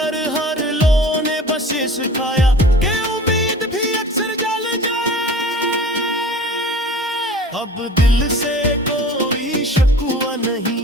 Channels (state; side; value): normal; both; correlation 0.41